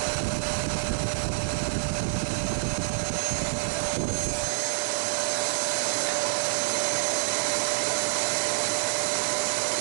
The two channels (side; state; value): left; silent; digital silence